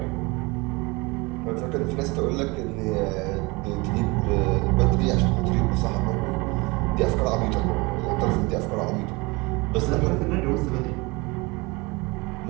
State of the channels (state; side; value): quieter; left; 25.5 dB